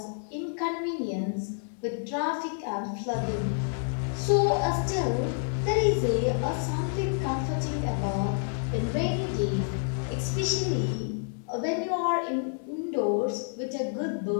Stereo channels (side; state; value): right; silent; 59 dB below the other